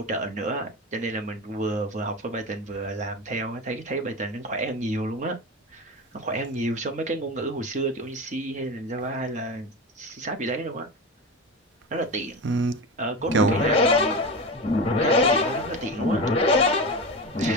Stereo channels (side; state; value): both; normal; correlation 0.23